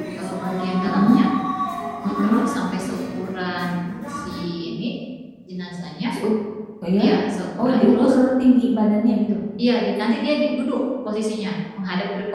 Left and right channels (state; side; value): identical; both; correlation 1.00